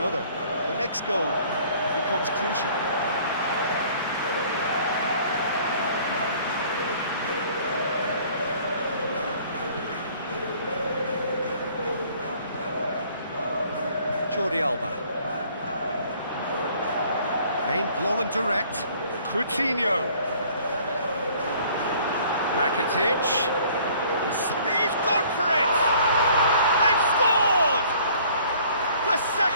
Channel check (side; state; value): both; inverted; correlation -0.56